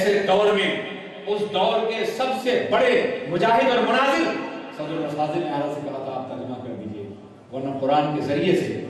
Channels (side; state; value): both; identical; correlation 1.00